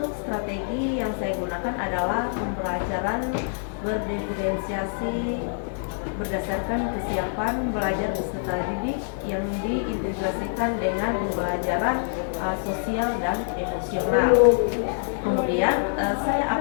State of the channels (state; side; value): silent; right; digital silence